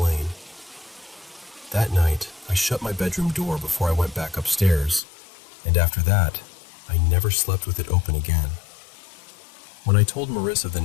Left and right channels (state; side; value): drops out; right; at 5.0 s